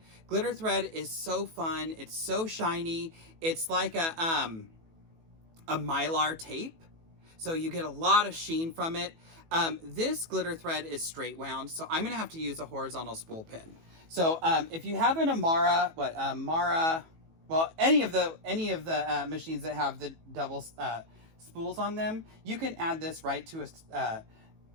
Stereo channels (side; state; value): left; late; 18 ms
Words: Glitter thread is so fun. It's so shiny. It's like a mylar tape. So you get a lot of sheen from it. This glitter thread is straight wound, so I'm gonna have to use a horizontal spool pin. So if you have an Amara, well, any of the machines that have the double spools on them, you can add this right to